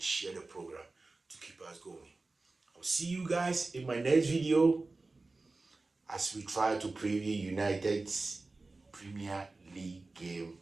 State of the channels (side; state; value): left; quieter; 3.4 dB